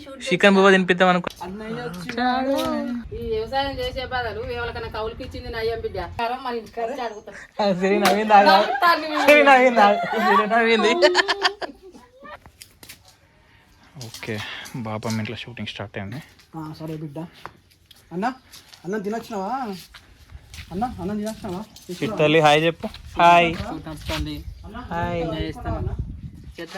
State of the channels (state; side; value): identical; both; correlation 1.00